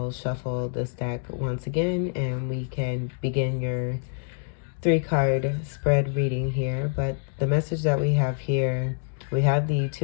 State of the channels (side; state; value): right; silent; 61 dB below the other